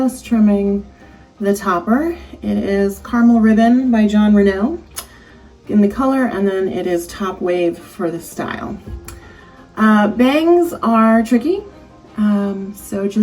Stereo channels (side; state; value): both; identical; correlation 1.00